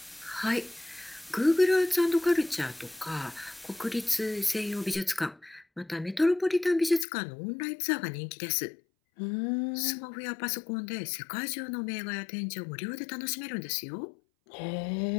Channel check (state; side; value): drops out; right; at 7.1 s